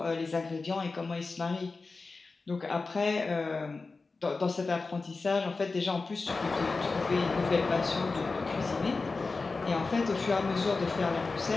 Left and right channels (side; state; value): right; quieter; 3.9 dB